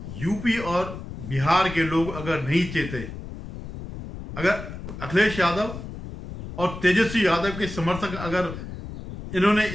यूपी और बिहार के लोग अगर नहीं चेते, अगर अखिलेश यादव और तेजस्वी यादव के समर्थक अगर इन्होंने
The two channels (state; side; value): noise; left; rumble, 10 dB below the sound